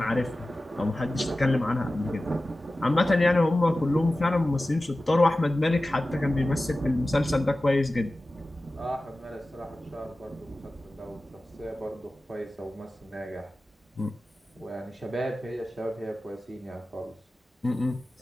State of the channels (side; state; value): both; normal; correlation 0.95